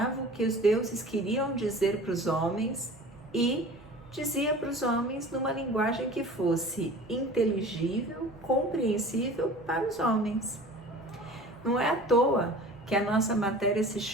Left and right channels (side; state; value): both; normal; correlation 0.42